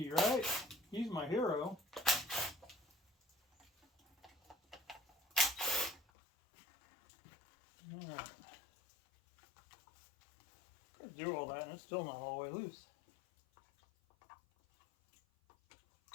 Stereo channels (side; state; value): right; drops out; at 6.0 s